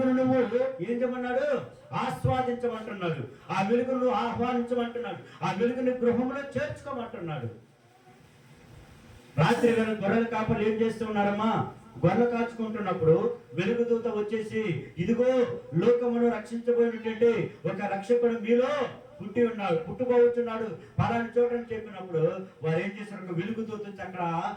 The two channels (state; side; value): identical; both; correlation 1.00